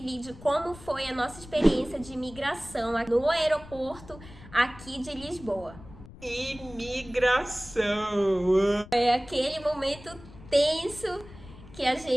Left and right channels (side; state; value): left; noise; rumble, 18 dB below the sound